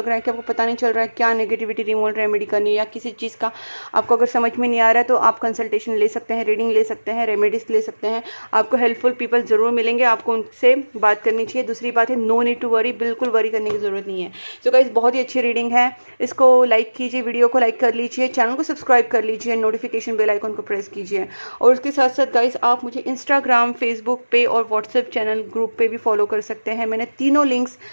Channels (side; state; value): both; inverted; correlation -1.00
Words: रहा है कि आपको पता नहीं चल रहा है क्या नेगेटिविटी रिमूवल रेमेडी करनी है, या किसी चीज़ का आपको अगर समझ में नहीं आ रहा है, तो आप कंसल्टेशन ले सकते हैं, रीडिंग ले सकते हैं, रेमेडीज ले सकते हैं। आपको हेल्पफुल पीपल ज़रूर मिलेंगे, आपको उनसे बात करनी चाहिए। दूसरी बात है, नो नीड टू वरी, बिल्कुल वरी करने की ज़रूरत नहीं है। सो गाइस, बहुत ही अच्छी रीडिंग है। इसको लाइक कीजिए, वीडियो को लाइक कर लीजिए, चैनल को सब्सक्राइब कर लीजिए, नोटिफिकेशन बेल आइकन को प्रेस कीजिए। और उसके साथ साथ गाइस, आप मुझे इंस्टाग्राम, फेसबुक पे और व्हाट्सएप चैनल ग्रुप पे भी फॉलो कर सकते हैं। मैंने तीनों लिंक्स